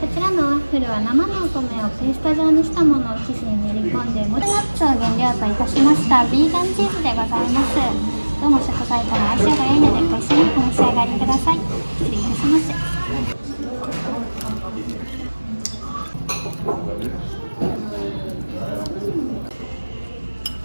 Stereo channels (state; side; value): inverted; both; correlation -1.00